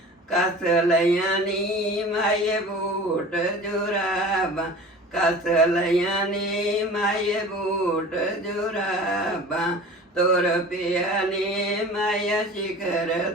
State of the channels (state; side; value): normal; both; correlation 0.39